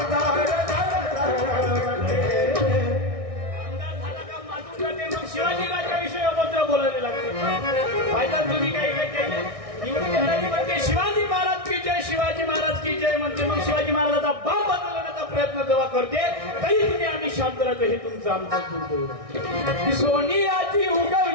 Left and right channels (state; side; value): late; left; 1.6 ms